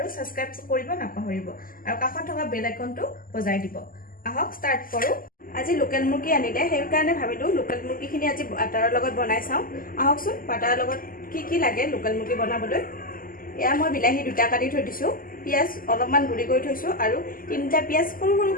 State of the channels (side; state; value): right; late; 0.41 ms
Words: সাবস্ক্ৰাইব কৰিব নাপাহৰিব আৰু কাষত থকা বেল আইকনটো বজাই দিব। আহক ষ্টাৰ্ট কৰো। আজি লোকেল মুৰ্গী আনিলে সেই কাৰণে ভাবিলো লোকেল মুৰ্গীখিনি আজি বাটাৰৰ লগত বনাই চাওঁ। আহকচোন বাটাৰৰ লগত কি লাগে লোকেল মুৰ্গী বনাবলৈ। এয়া মই বিলাহী দুটা কাটি থৈ দিছো, পিয়াজ অলপমান গুৰি কৰি থৈছো আৰু তিনিটা পিয়াজ সৰু